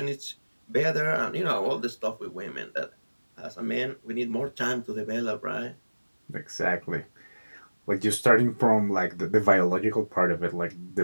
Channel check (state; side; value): inverted; both; correlation -1.00